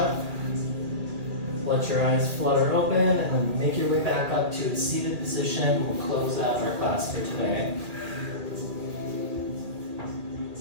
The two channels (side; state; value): left; late; 2.2 ms